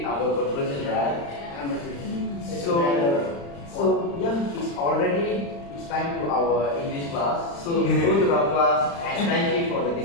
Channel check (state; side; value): late; right; 35 ms